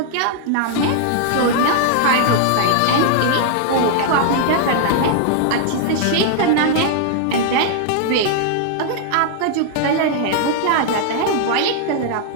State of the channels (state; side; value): different; both; correlation 0.00